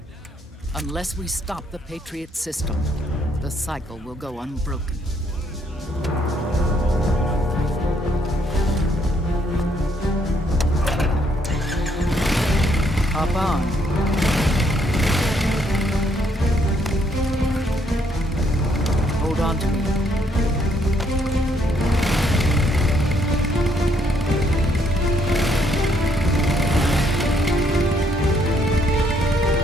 Unless we stop the Patriot system, the cycle will go unbroken. Hop on. Hold on to me.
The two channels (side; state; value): both; normal; correlation 0.71